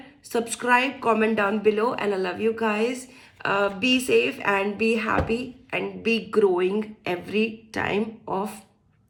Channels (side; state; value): both; identical; correlation 1.00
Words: subscribe, comment down below, and I love you guys. Be safe and be happy and be growing every time of